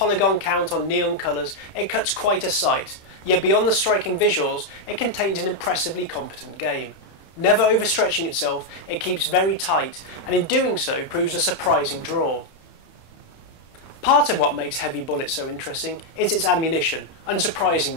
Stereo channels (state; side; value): late; right; 31 ms